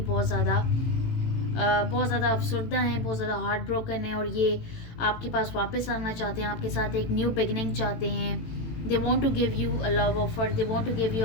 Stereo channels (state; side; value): late; right; 18 ms